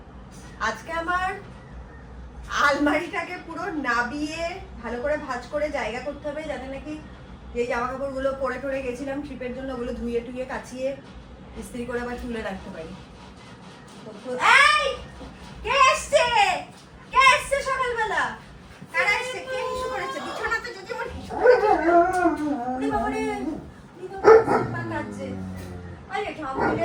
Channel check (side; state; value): both; identical; correlation 1.00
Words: আজকে আমার আলমারিটাকে পুরো নাবিয়ে ভালো করে ভাঁজ করে জায়গা করতে হবে, যাতে নাকি যে জামা কাপড়গুলো পরে টরে গেছিলাম ট্রিপের জন্য ওগুলো ধুয়ে টুয়ে কাচিয়ে ইস্ত্রি করে আবার তুলে রাখতে পারি। এই কে এসছে? কে এসছে সকালবেলা? কারা এসছে? কে হিসু করেছে? বিছানাতে যদি আমার হিসু করেছে। ওরে বাবা রে, সিম্বা কাঁদছে। আরে ঠাম্মু